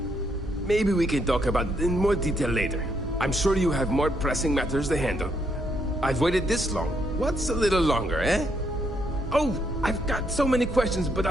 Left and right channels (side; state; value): both; normal; correlation 0.75